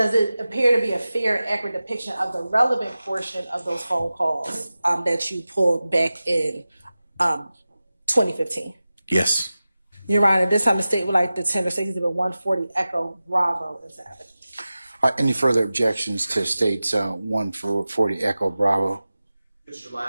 it appear to be a fair and accurate depiction of the relevant portion of those phone calls that you pulled back in 2015? Yes. Your Honor, this time the state would like to tender Exhibit 140 Echo Bravo into evidence. Any further objections to states 140 Echo Bravo? Mr.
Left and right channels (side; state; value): both; inverted; correlation -0.95